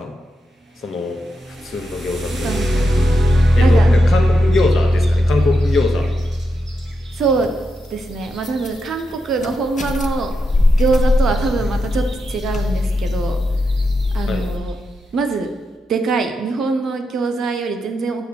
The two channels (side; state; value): both; normal; correlation 0.85